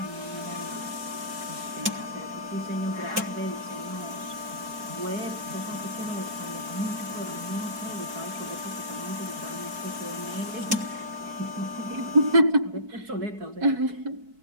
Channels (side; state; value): left; late; 4.6 ms